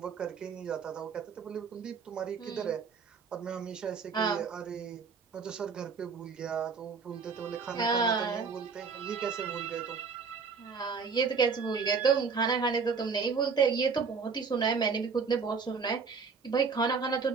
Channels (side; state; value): left; quieter; 5.4 dB